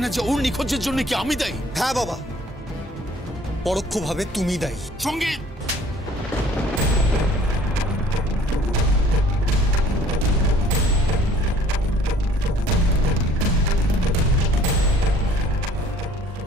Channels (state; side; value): normal; both; correlation 0.55